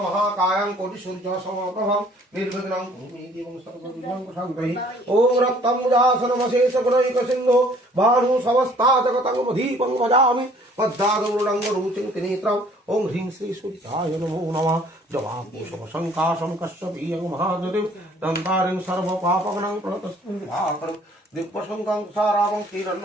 महाकायं कोटिसूर्य समप्रभं निर्विघ्नं कुरुमे देवं सर्वविघ्नं शान्तये ॐ रक्तमुजासनमशेष गुणैकसिन्धो भानु समस्ता जगतं दीपं भजामि पद्मादौरुणङ्गरुचिं त्रिनेत्रम् ॐ ह्रीं श्री सूर्याय नमो नमः जवाकुशमशङ्काशं कश्यपीयं महादतिं दन्तारिं सर्वपापगणं प्रणतस्मिन् दिक्पशङ्कं सारावं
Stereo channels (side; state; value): both; normal; correlation 0.57